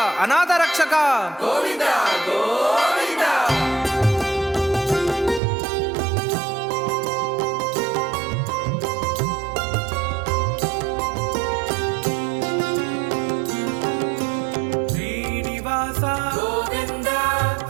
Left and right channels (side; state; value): left; drops out; at 5.4 s